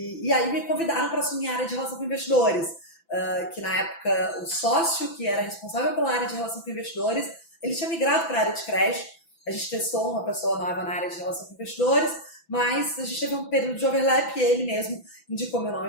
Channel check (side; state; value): right; late; 6.0 ms